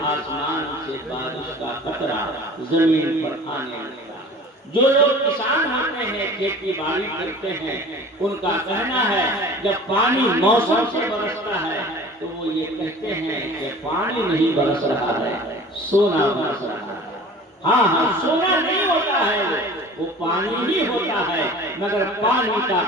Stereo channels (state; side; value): normal; both; correlation 0.43